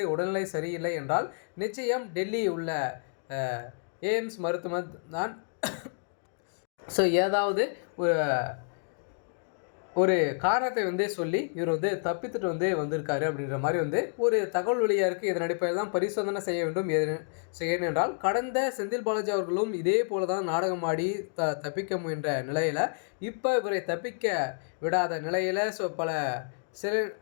உடல்நிலை சரியில்லை என்றால் நிச்சயம் டெல்லி உள்ள எய்ம்ஸ் மருத்துவமனை தான் ஏதாவது ஒரு காரணத்தை வந்து சொல்லி இவர் வந்து தப்பித்துட்டு வந்து வந்திருக்காரு அப்படின்ற மாதிரி வந்து ஒரு தகவல் வெளியாக இருக்குது. இதன் அடிப்படையில் தான் பரிசோதனை செய்ய வேண்டும். ஏனென்றால் கடந்த செந்தில் பாலாஜி அவர்களும் இதே போல தான் நாடகமாடி தப்பிக்க முயன்ற நிலையில் இப்போ இவரை தப்பிக்க விடாத நிலையில்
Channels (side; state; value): right; silent; digital silence